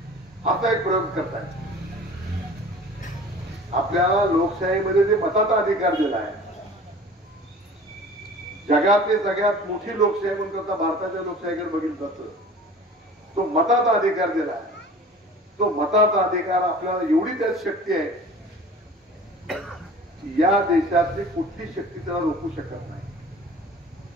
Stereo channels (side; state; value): both; normal; correlation 0.43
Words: असा एक प्रयोग करतायत। आपल्याला लोकशाहीमध्ये जे मताचा अधिकार दिला आहे, जगातली सगळ्यात मोठी लोकशाही म्हणून करता भारताच्या लोकशाहीकडे बघितलं जातं, तो मताचा अधिकार दिला आहे। तो मताचा अधिकार आपल्याला एवढी त्यात शक्ती आहे, या देशातली कुठली शक्ती त्याला रोखू शकत नाही।